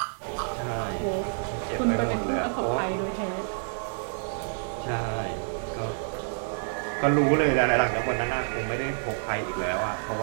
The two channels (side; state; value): left; silent; 59 dB below the other